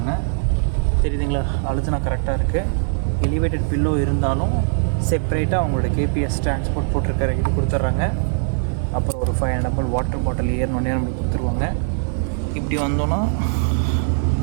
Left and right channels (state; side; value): silent; left; 65 dB below the other